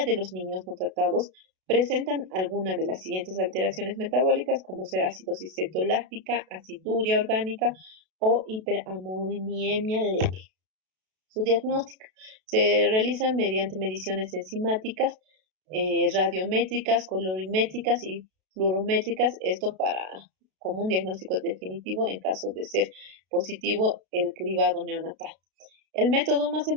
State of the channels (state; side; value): late; left; 32 ms